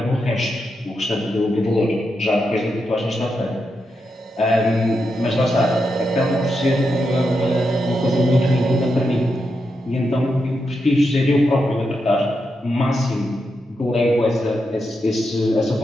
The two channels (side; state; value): both; normal; correlation 0.85